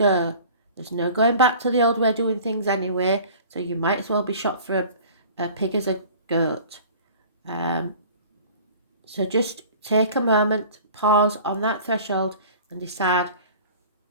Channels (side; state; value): both; inverted; correlation -0.44